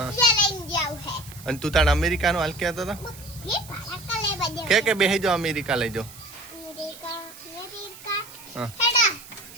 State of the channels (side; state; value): right; noise; hiss, 18 dB below the sound